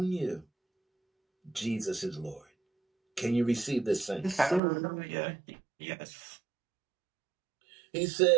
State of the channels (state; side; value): drops out; left; at 4.6 s